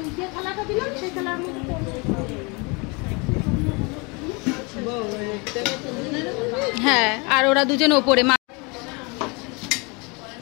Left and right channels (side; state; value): right; quieter; 29.6 dB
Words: হ্যাঁ, আর ওরা দুজন ওপরে।